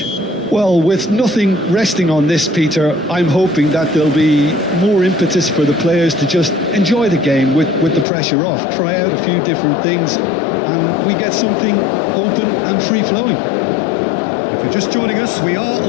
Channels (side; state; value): right; drops out; at 8.1 s